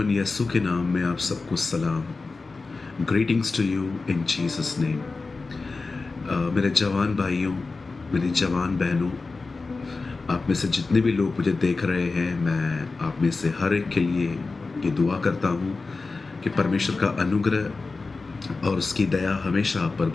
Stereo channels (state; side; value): quieter; right; 3.9 dB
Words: यसु के नाम में आप सबको सलाम। Greetings to you in Jesus name. मेरे जवान भाइयों, मेरी जवान बहनों, आप में से जितने भी लोग मुझे देख रहे हैं, मैं आप में से हर एक के लिए ये दुआ करता हूँ कि परमेश्वर का अनुग्रह और उसकी दया हमेशा आप पर